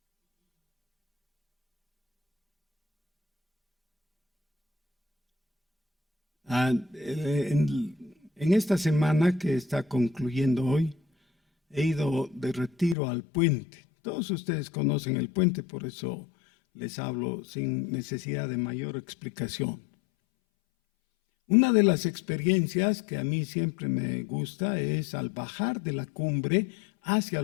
En esta semana que está concluyendo hoy, he ido de retiro al puente. Todos ustedes conocen el puente, por eso les hablo sin necesidad de mayor explicación. Una de las experiencias que a mí siempre me gusta es al bajar de la cumbre hacia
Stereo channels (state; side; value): drops out; right; at 13.0 s